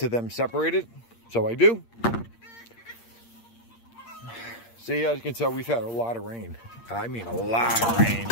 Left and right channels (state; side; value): late; right; 8.6 ms